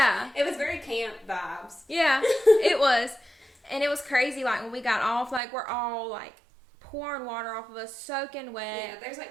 It was very camp vibes. Yeah, it was. And it was crazy, like when we got off, like we're all like pouring water off of us, soaking wet. Yeah, there's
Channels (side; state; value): left; drops out; at 5.4 s